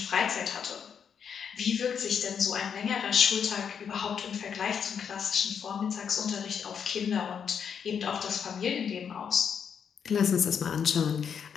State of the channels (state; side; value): quieter; right; 7.3 dB